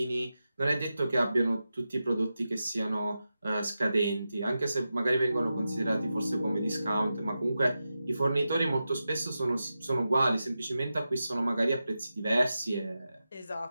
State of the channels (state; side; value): inverted; both; correlation -0.91